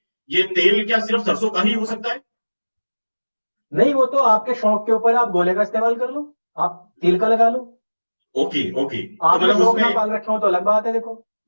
ये तेल क्या सिर्फ सरसों का ही हो सकता है? नहीं, वो तो आपके शौक के ऊपर है, आप गोले का इस्तेमाल कर लो, आप तिल का लगा लो। ओके ओके, तो आपने मतलब शौक ना उसमें, पाल रखे हो तो अलग बात है, देखो।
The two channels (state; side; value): inverted; both; correlation -1.00